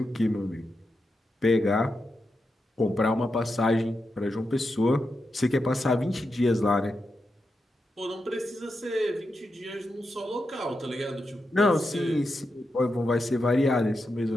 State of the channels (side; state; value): both; normal; correlation 0.87